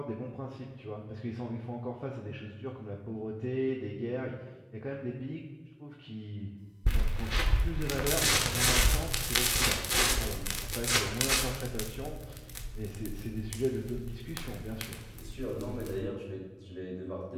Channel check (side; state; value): both; identical; correlation 1.00